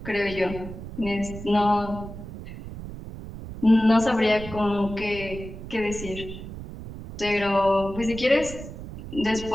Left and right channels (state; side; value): noise; right; rumble, 11 dB below the sound